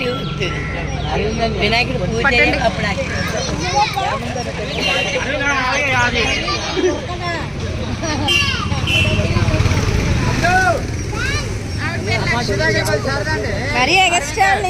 వద్దు. వినాయకుడు పూజ అప్పుడు మరీ ఎగస్ట్రా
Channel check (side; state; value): both; identical; correlation 1.00